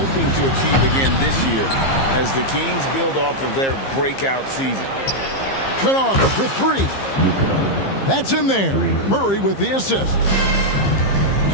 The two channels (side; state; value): right; late; 15 ms